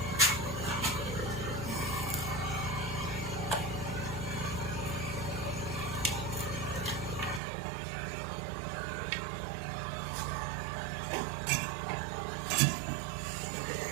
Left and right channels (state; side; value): drops out; left; at 7.4 s